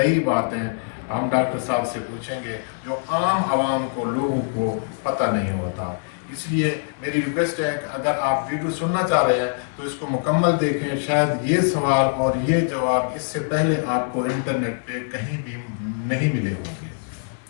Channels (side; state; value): right; silent; 55 dB below the other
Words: बातें हम डॉक्टर साहब से पूछेंगे जो आम आवाम को, लोगों को पता नहीं होता। इसलिए मेरी रिक्वेस्ट है कि अगर आप वीडियो सुनना चाह रहे हैं तो इसको मुकम्मल देखें। शायद ये सवाल और ये जवाब इससे पहले आपको इंटरनेट पे कहीं भी नहीं मिले होंगे।